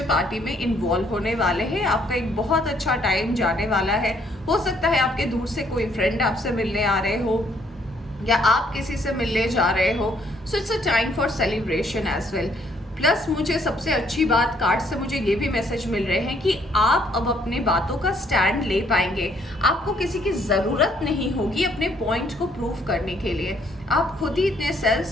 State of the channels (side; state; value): both; normal; correlation 0.67